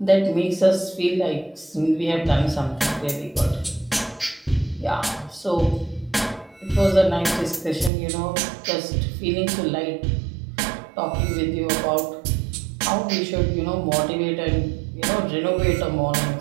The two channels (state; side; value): drops out; left; at 7.9 s